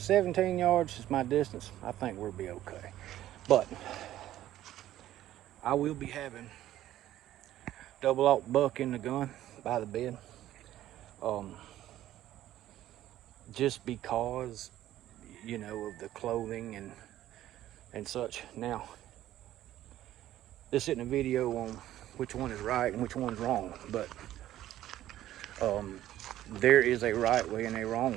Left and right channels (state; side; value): quieter; left; 13.3 dB